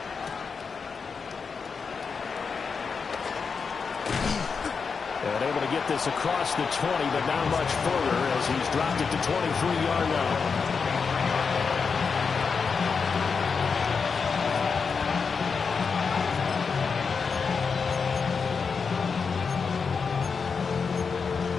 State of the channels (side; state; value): right; quieter; 5.4 dB